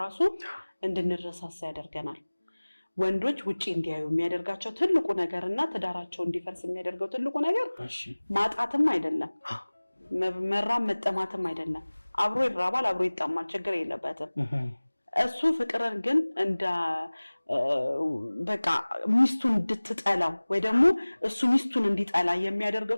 እንድንረሳሳ ያደርገናል ወንዶች ውጪ እንዲያዩ የሚያደርጋቸው ትልቁ ነገርና ትዳራቸው እንዲፈርስ የሚያደርገው ትልቁ ነገር ማጣትም አይደለም መራም መጠማትም አይደለም አብሮ ይራባል አብሮ ይጣማል ችግር የለበትም እሱ ፍቅርን ግን እንደ በቃ ሚስቱን እንድትጠላው ወይ ደግሞ እሱ ሚስቱን እንዲጠላ የሚያደርገው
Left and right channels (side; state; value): both; inverted; correlation -1.00